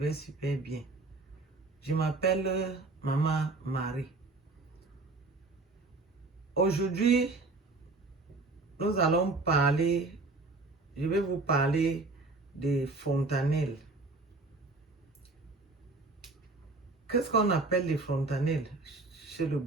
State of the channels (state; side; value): quieter; left; 3.5 dB